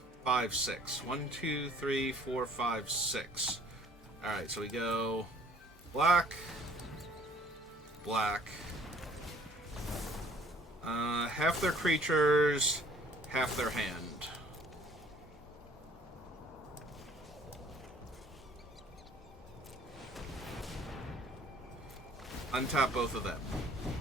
5, 6. 1, 2, 3, 4, 5, 6. Alright, so we go black, black. Half their creatures, half their hand. Untap both of them.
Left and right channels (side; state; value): both; normal; correlation 0.56